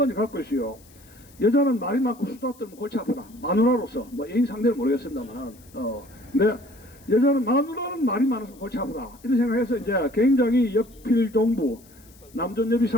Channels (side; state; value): left; noise; hiss, 26 dB below the sound